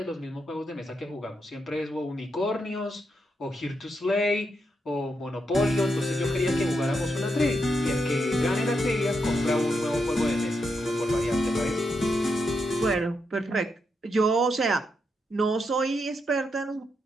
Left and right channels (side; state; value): both; normal; correlation 0.82